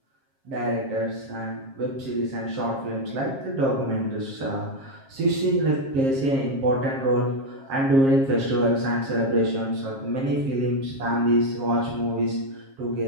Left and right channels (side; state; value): left; late; 7.4 ms